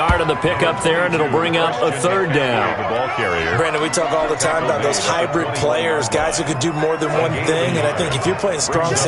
on the pickup there, and it'll bring up a 3rd down. The ball carrier. Brandon, we talk all the time about those hybrid players, guys who could do more than one thing, and I think if you're playing strong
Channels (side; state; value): both; identical; correlation 1.00